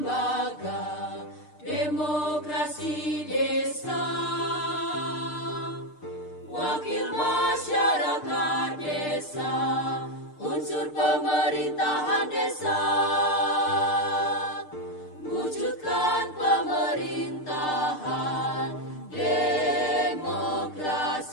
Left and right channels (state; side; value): late; right; 6.6 ms